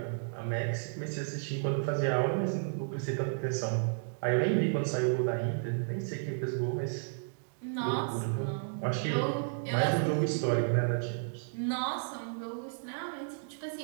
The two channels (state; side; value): silent; left; digital silence